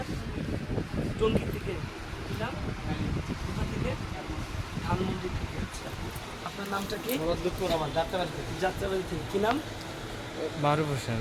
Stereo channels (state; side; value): identical; both; correlation 1.00